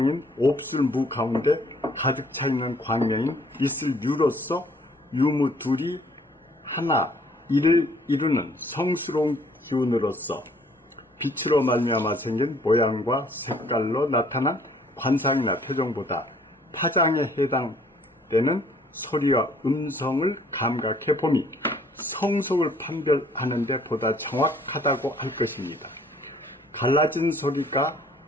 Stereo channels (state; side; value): normal; both; correlation 0.60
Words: 옵슬무 가운데 가득 차 있는 광명인 있을 유로서 유무 둘이 하나 이를 이루는 성스러운 기운으로서 빛으로 말미암아 생긴 모양과 색깔로 나타난 관상이나 표정보다 파장에 해당되는 소리와 음성을 감각해 봄이 성속을 판별하는 데 보다 정확하다고 할 것입니다. 갈라진 소리가